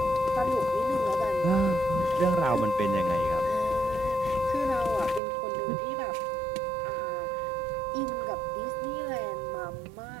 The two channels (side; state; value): left; drops out; at 5.2 s